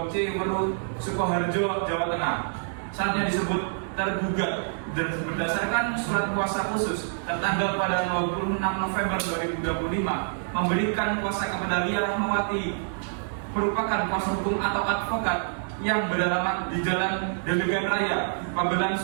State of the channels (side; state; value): left; silent; digital silence